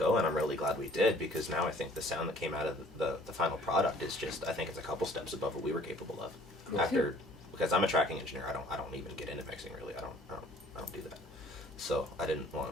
and I'm really glad we did, because now I think the sound that came out of the final product is just, I think it's a couple steps above what we were capable of. Cool. Because I'm a tracking engineer, I don't even get into mixing really. I don't do that. So I didn't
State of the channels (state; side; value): normal; both; correlation 0.55